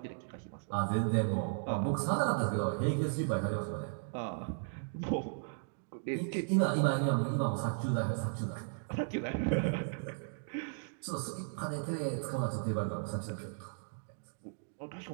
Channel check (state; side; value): silent; left; digital silence